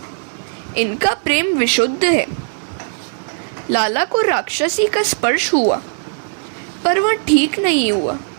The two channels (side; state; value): left; silent; digital silence